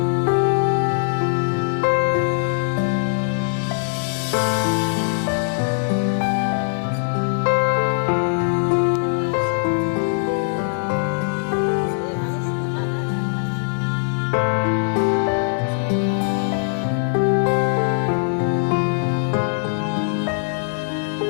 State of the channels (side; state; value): right; silent; digital silence